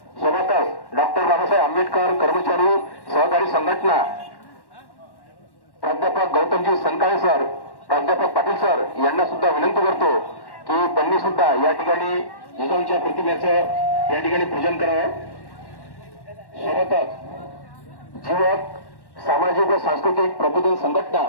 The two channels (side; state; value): right; late; 1.1 ms